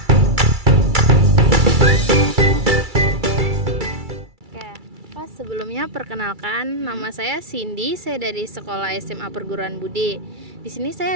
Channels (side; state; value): left; late; 2.3 ms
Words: Oke, Pak, sebelumnya perkenalkan nama saya Cindy, saya dari Sekolah SMA Perguruan Budi. Di sini